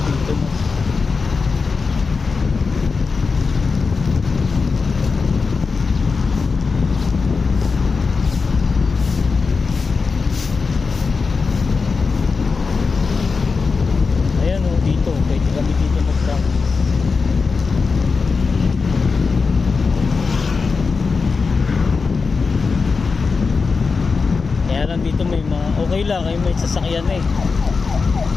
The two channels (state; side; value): quieter; right; 4.7 dB